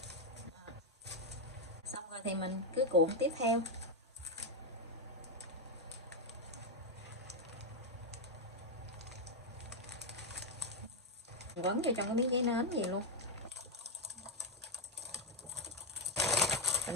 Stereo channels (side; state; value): both; normal; correlation 0.04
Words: Xong rồi thì mình cứ cuộn tiếp theo. Quấn vô trong cái miếng giấy nến gì luôn.